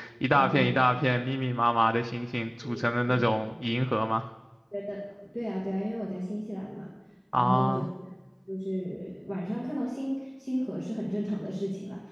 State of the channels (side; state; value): both; identical; correlation 1.00